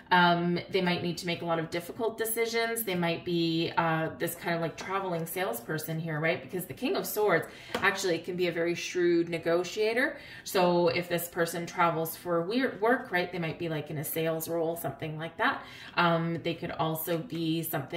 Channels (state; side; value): identical; both; correlation 1.00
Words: They might need to make a lot of difficult decisions. They might be this kind of like traveling salesperson here, right? Because the King of Swords actually can be a very shrewd negotiator. So if this person travels for work, right, they might be like in a sales role, something like that. They could also be